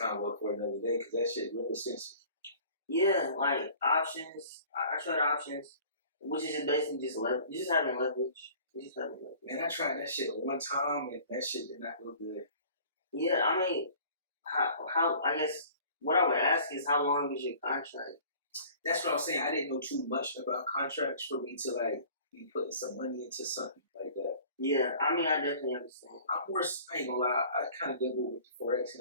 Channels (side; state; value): both; inverted; correlation -0.48